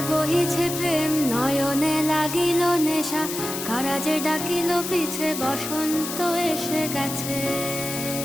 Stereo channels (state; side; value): noise; left; hiss, 6 dB below the sound